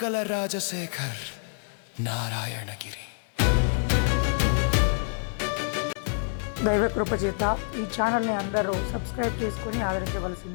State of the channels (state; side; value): silent; right; 60 dB below the other